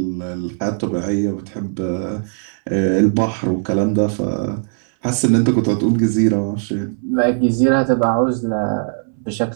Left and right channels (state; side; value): silent; left; 66 dB below the other